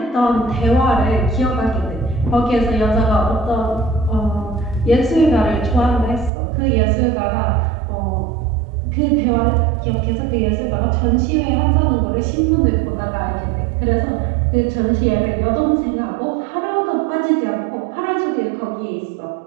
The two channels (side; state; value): left; drops out; at 6.3 s